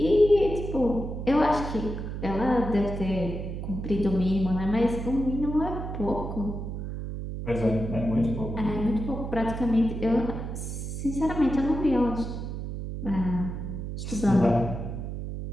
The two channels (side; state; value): right; noise; hum, 6 dB below the sound